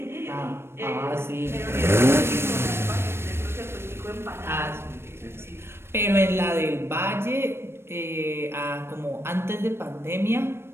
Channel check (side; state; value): left; late; 0.12 ms